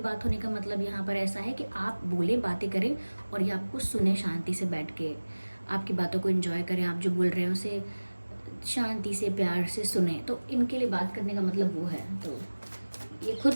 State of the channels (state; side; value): inverted; both; correlation -1.00